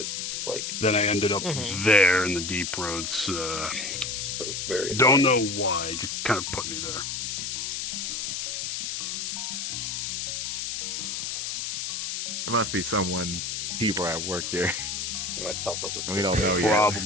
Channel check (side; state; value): left; noise; hiss, 3 dB below the sound